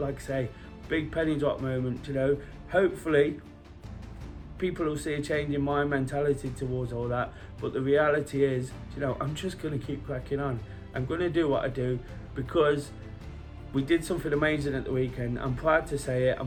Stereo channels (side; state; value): both; identical; correlation 1.00